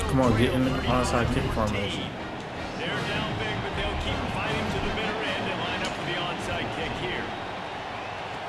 Come on, get in the trail onside kick 31-14. formation. They're down big, but they'll keep fighting to the bitter end and line up for the onside kick here.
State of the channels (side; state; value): both; identical; correlation 1.00